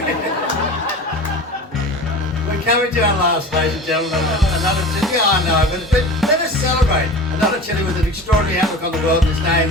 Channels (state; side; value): normal; both; correlation 0.35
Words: We're We're coming to our last, ladies and gentlemen. Another chili. Yeah, I know, but let us celebrate. Another chili with an extraordinary outlook on the world. His name